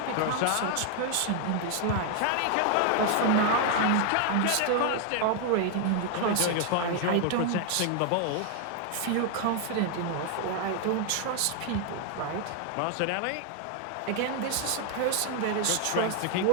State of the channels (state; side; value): different; both; correlation 0.00